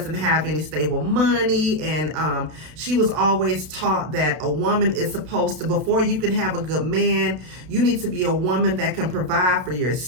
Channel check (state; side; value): late; left; 32 ms